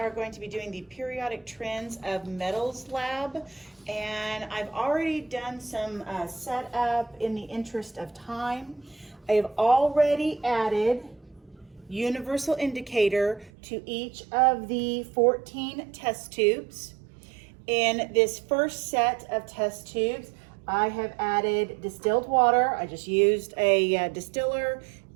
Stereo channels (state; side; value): drops out; left; at 13.5 s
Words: going to be doing the periodic trends of metals lab, and I've already done some setup in the interest of time. I have already added universal indicator to each of the 14 test tubes. In this first set of test tubes, I have added distilled water. I just used a distiller